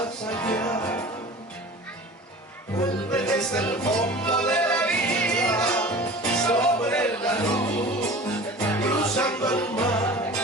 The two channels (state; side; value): normal; both; correlation 0.39